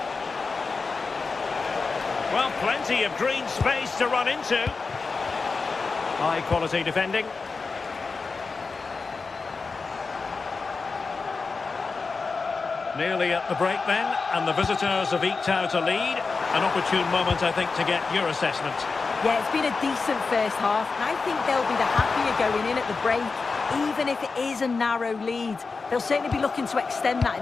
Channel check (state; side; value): quieter; right; 4.4 dB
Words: Well, plenty of green space to run into. High quality defending. Nearly at the break then, and the visitors have eked out a lead. An opportune moment, I think, to get your assessment. Yeah, it's been a decent first half, and I think they'll be the happier going in at the break, even if it is a narrow lead. They'll certainly be looking to extend that